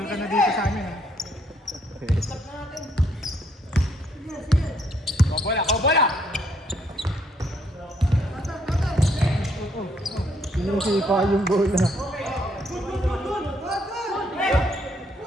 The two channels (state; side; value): normal; both; correlation 0.70